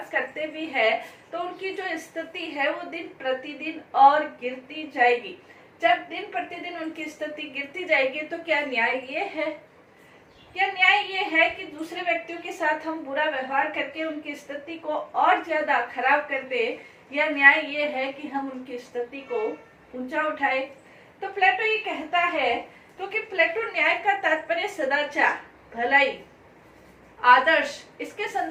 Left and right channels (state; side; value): identical; both; correlation 1.00